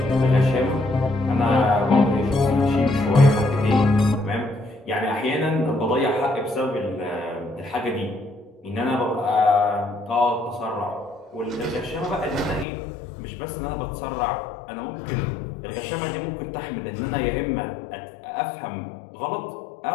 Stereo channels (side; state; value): right; drops out; at 12.7 s